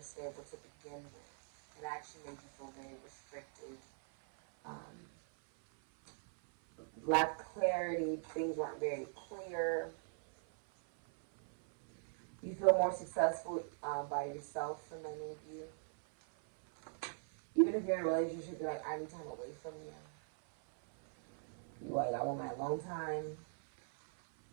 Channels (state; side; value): silent; left; 51 dB below the other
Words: stable to begin with. It actually made you feel very restricted. Lacked clarity, things weren't very clear. You feel more successful by yourself for many of you. Even if you're in a relationship, you're like, I need time away from you. You're like, I want my alone time.